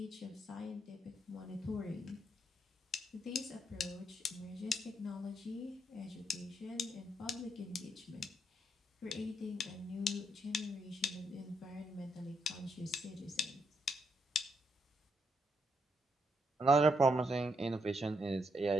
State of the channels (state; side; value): normal; both; correlation 0.77